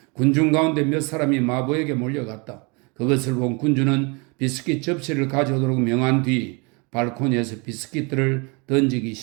군중 가운데 몇 사람이 마부에게 몰려갔다. 그것을 본 군주는 비스킷 접시를 가져오도록 명한 뒤 발코니에서 비스킷들을 던지기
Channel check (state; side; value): quieter; left; 30.6 dB